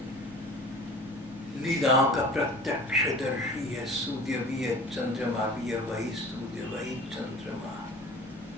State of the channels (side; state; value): both; normal; correlation 0.43